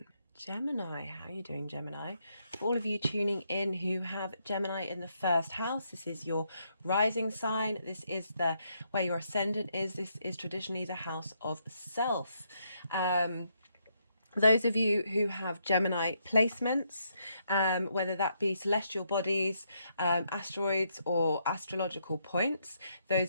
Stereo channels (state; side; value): inverted; both; correlation -0.76